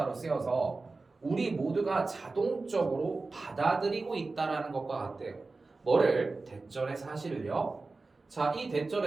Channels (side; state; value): left; quieter; 3.7 dB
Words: 쓰여서 우리 모두가 자동적으로 받아들이고 있다라는 것과 같대요. 뭐를? 대절의 사실을요. 자, 이